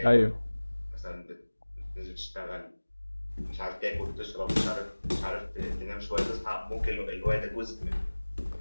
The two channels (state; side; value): inverted; both; correlation -1.00